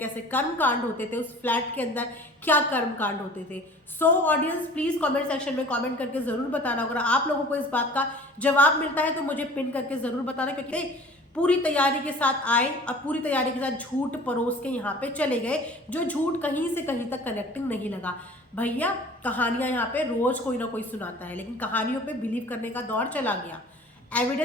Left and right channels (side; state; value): both; normal; correlation 0.45